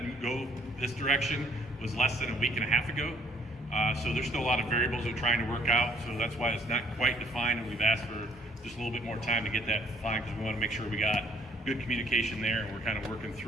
go this direction was less than a week and a half ago. So there's still a lot of variables we're trying to work out, so that's why it's not quite defined, and we've asked for just a little bit more time to get that defined because we want to make sure we got good communication there and we're kind of working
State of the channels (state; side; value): normal; both; correlation 0.62